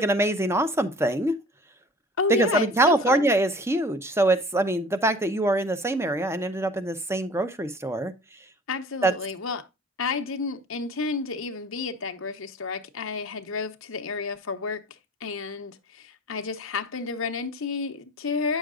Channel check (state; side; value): normal; both; correlation 0.44